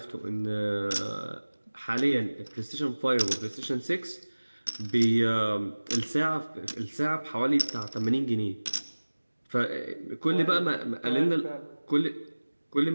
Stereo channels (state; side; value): inverted; both; correlation -1.00